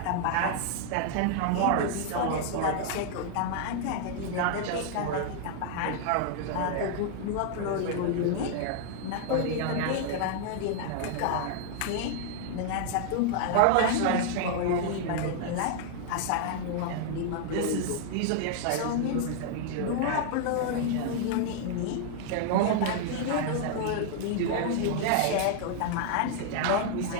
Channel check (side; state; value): both; different; correlation 0.00